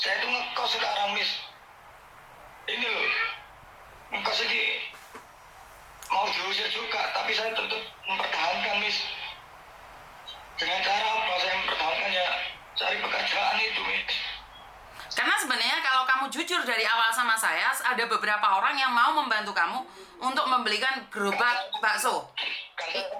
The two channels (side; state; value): both; identical; correlation 1.00